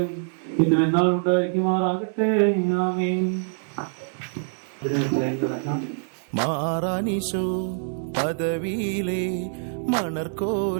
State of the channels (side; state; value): left; silent; 62 dB below the other